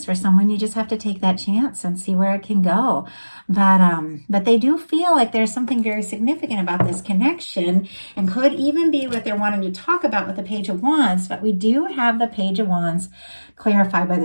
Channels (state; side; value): inverted; both; correlation -1.00